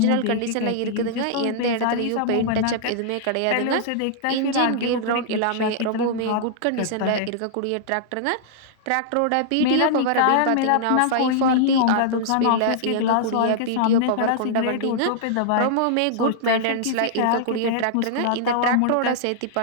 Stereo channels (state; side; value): different; both; correlation -0.01